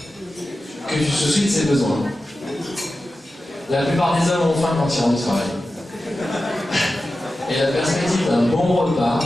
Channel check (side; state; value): both; normal; correlation 0.93